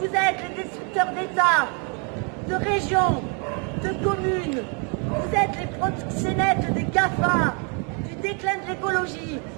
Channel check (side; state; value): left; quieter; 36.9 dB